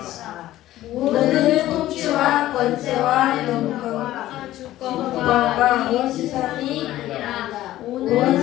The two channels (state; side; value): quieter; right; 14.7 dB